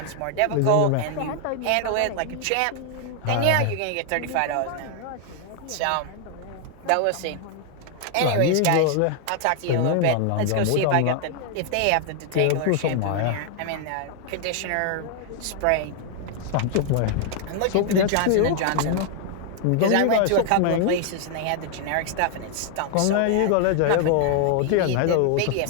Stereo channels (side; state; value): both; different; correlation 0.00